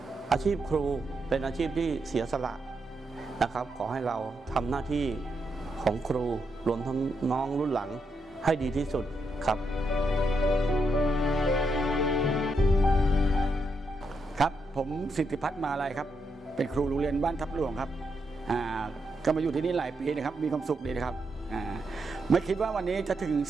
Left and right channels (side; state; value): both; normal; correlation 0.81